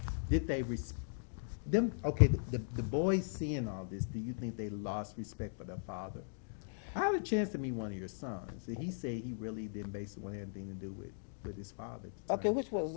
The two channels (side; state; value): right; silent; digital silence